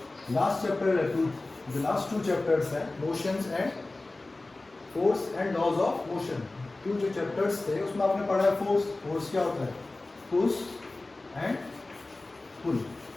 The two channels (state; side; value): quieter; right; 3.1 dB